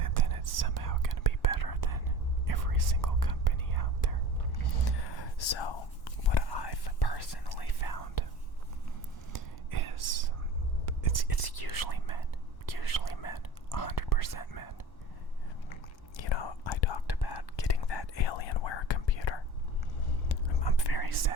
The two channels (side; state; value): right; late; 1.1 ms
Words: then it's somehow going to be better than every single company out there. So, what I've personally found is it's usually men, 100% men. You know, I talked about getting that Alienware computer. I'm very